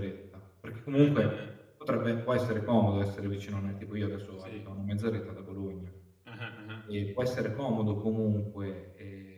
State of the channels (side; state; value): both; identical; correlation 1.00